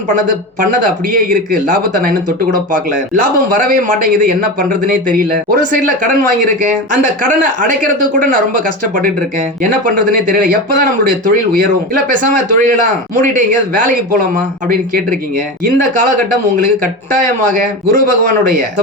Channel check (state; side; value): normal; both; correlation 0.23